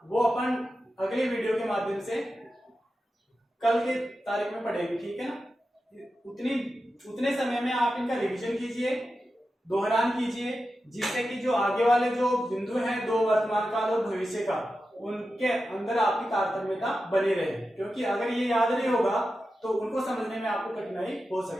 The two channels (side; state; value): both; normal; correlation 0.91